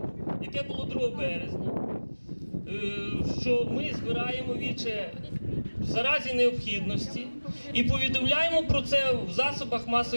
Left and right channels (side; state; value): both; inverted; correlation -1.00